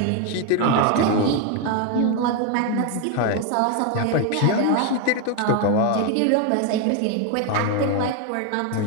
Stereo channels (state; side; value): different; both; correlation 0.01